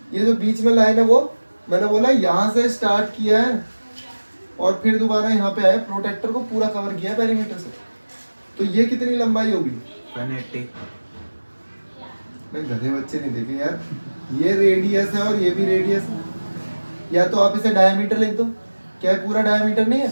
ये जो बीच में लाइन है वो मैंने बोला यहाँ से स्टार्ट किया है और फिर दोबारा यहाँ पे आया, प्रोटेक्टर को पूरा कवर किया पेरीमीटर से, तो ये कितनी लंबाई होगी, 180। मैं गधे बच्चे नहीं देखे यार, ये रेडियस है और ये भी रेडियस है, या तो आप इसे डायमीटर लिख दो, क्या है पूरा डायमीटर नहीं है,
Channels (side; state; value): both; inverted; correlation -1.00